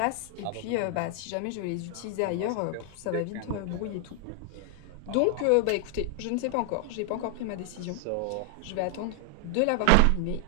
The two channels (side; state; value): both; different; correlation 0.00